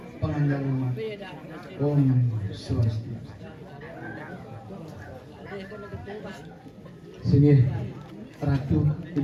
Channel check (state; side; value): identical; both; correlation 1.00